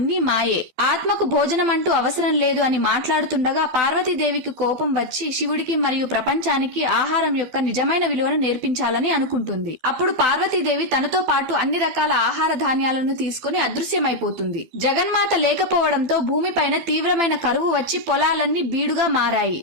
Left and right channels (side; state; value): left; late; 12 ms